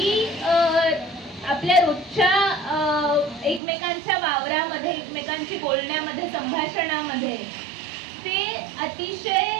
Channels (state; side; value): drops out; left; at 3.6 s